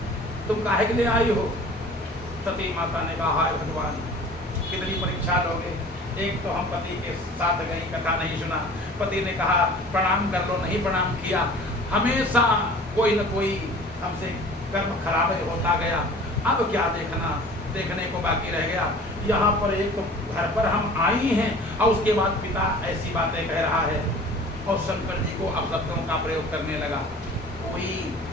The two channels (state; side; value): normal; both; correlation 0.45